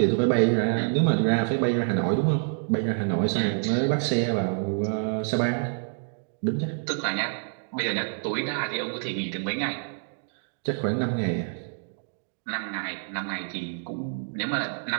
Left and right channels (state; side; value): silent; left; 59 dB below the other